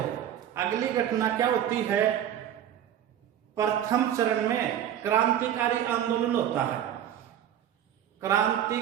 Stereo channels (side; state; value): left; quieter; 10.5 dB